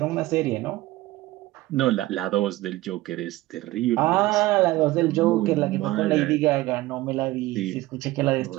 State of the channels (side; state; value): left; quieter; 17.8 dB